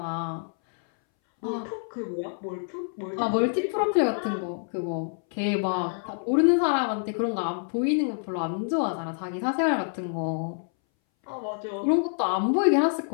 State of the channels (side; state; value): right; silent; 60 dB below the other